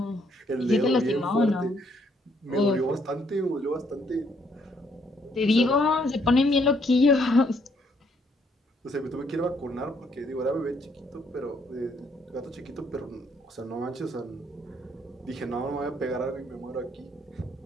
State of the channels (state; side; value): normal; both; correlation 0.69